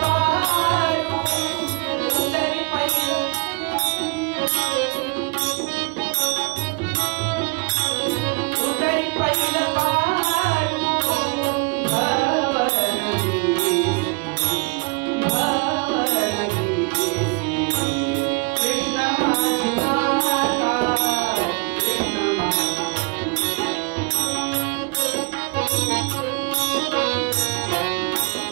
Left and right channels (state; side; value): quieter; left; 31.0 dB